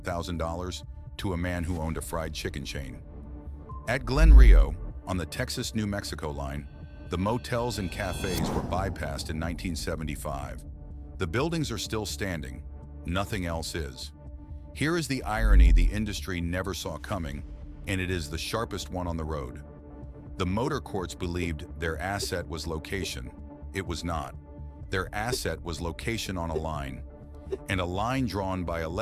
to a man who owned a fried chicken chain. At Glen Rio, on the Texas-New Mexico line, the motels and cafes were bypassed in 1975. The buildings are still standing. Nothing else is. Here is the irony the industry never saw coming, and it is the sharpest one on the road. The motor courts believed their asset was location. It was not. Their asset was location on a line, and a line drawn by a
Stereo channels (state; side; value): identical; both; correlation 1.00